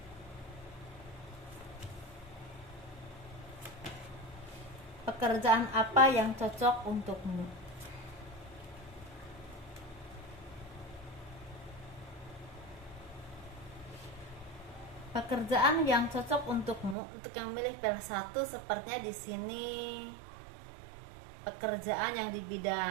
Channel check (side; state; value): left; drops out; at 16.9 s